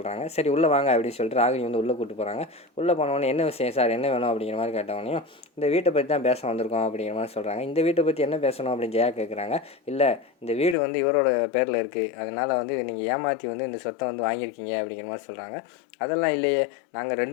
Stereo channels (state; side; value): drops out; right; at 10.8 s